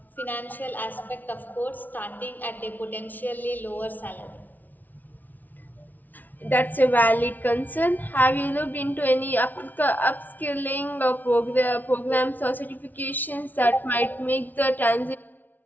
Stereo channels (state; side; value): late; right; 0.082 ms